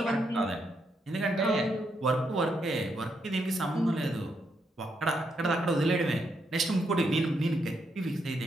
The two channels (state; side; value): normal; both; correlation 0.79